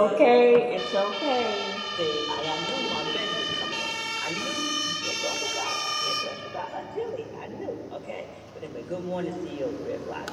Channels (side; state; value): both; identical; correlation 1.00